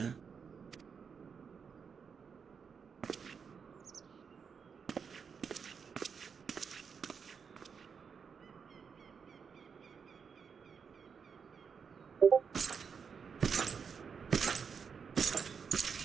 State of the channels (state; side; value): quieter; left; 6.2 dB